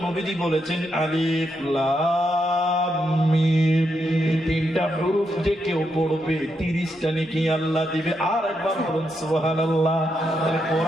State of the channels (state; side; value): normal; both; correlation 0.82